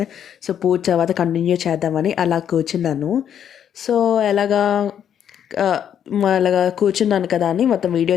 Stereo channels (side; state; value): right; quieter; 9.2 dB